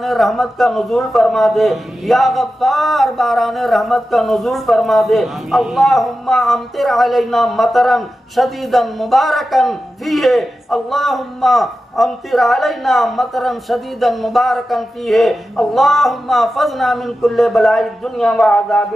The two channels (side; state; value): both; normal; correlation 0.92